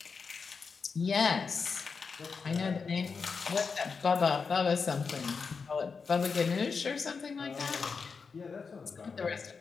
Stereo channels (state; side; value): quieter; right; 5.2 dB